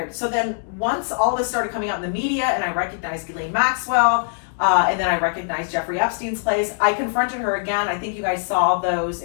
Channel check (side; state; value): right; silent; digital silence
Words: So then once all this started coming out in the media and I recognized Ghislaine Maxwell, and then I recognized Jeffrey Epstein's place, I confronted her again. I think you guys saw those